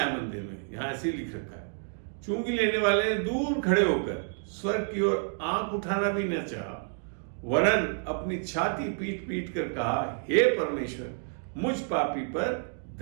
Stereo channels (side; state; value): left; silent; 58 dB below the other